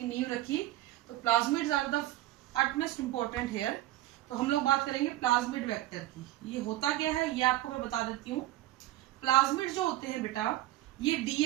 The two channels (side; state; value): left; quieter; 15.6 dB